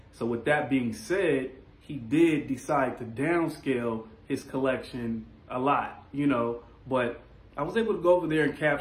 So with that being said, he did decide to downscale his collection a lot, but I was able to go over there and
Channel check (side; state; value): both; identical; correlation 1.00